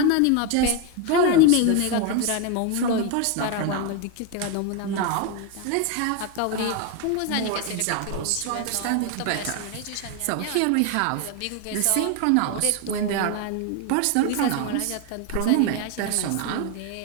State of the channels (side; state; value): both; different; correlation 0.01